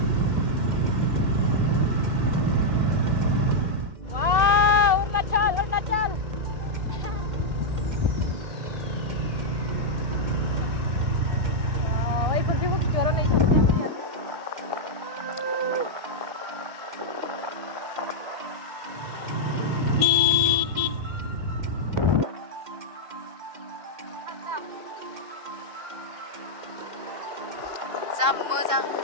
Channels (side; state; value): left; late; 2.2 ms